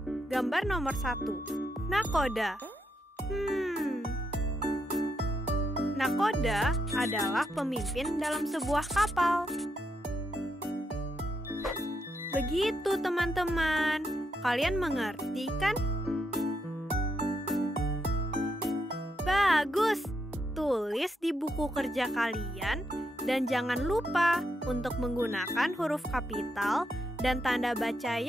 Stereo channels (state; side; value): normal; both; correlation 0.81